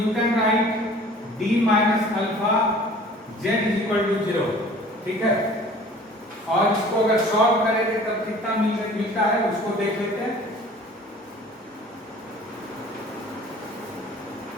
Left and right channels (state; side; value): normal; both; correlation 0.47